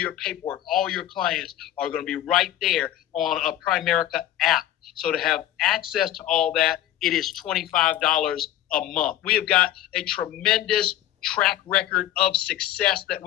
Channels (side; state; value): right; quieter; 12.9 dB